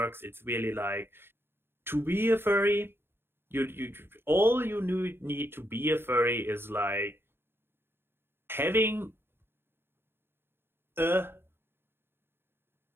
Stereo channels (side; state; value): left; late; 0.11 ms